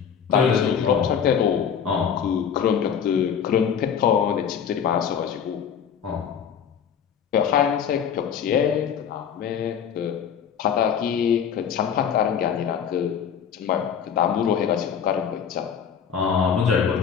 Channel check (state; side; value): quieter; right; 7.7 dB